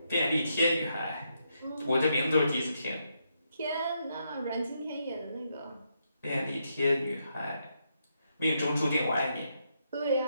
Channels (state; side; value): inverted; both; correlation -0.80